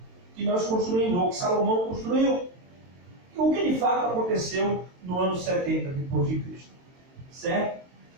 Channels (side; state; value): left; late; 22 ms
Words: que nós construímos, ou que Salomão construiu. O que de fato aconteceu no ano 70 depois de Cristo. Certo?